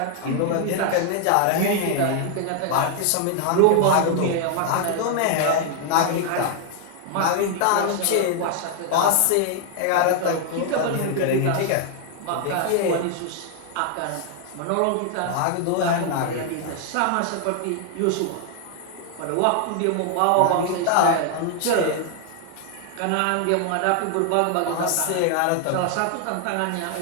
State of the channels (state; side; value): different; both; correlation 0.00